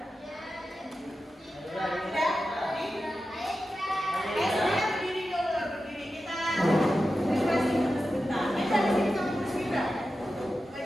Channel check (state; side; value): normal; both; correlation 0.92